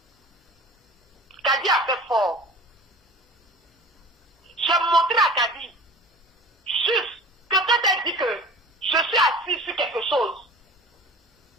Kadi a fait fort. J'ai montré à Kadi, juste, que quand elle dit que je suis assis sur quelque chose,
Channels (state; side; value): normal; both; correlation 0.40